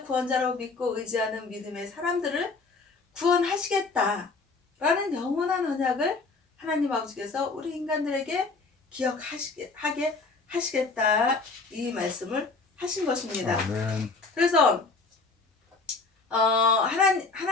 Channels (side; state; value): right; quieter; 4.0 dB